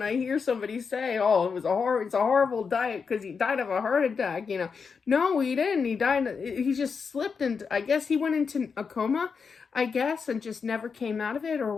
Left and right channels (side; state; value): right; quieter; 5.6 dB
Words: I hear somebody say, oh, it's a horrible diet because he died of a heart attack, No, he didn't. He just slipped, and I guess he went into a coma, and just never came out of it or